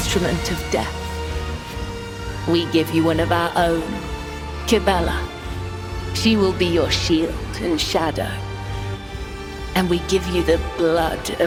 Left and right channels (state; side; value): identical; both; correlation 1.00